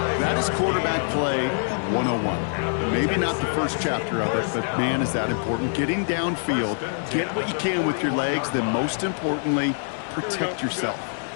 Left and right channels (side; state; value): right; silent; 60 dB below the other